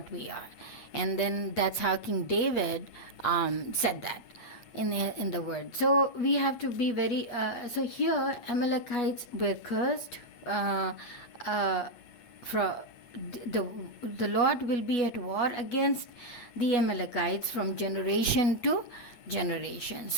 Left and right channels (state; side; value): late; right; 8.8 ms